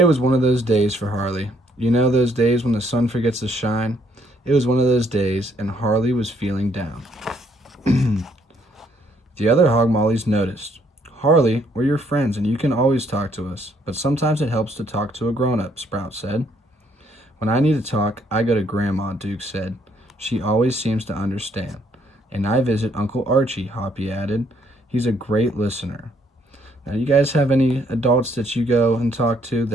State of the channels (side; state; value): both; normal; correlation 0.68